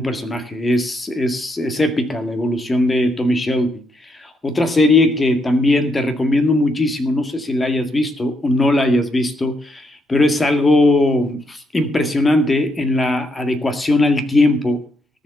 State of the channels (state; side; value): normal; both; correlation 0.77